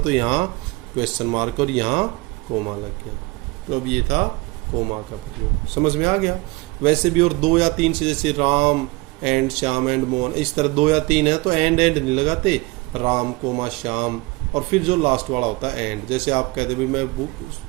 यहाँ क्वेश्चन मार्क और यहाँ कोमा लग गया। तो अब ये था कोमा का प्रयोग। समझ में आ गया। वैसे भी और 2 या 3 से, जैसे राम एंड श्याम एंड मोहन, इस तरह 2 या 3 है तो एंड नहीं लगाते, राम कोमा श्याम, और फिर जो लास्ट वाला होता है एंड। जैसे आप कहते भी, मैं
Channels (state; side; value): quieter; left; 23.7 dB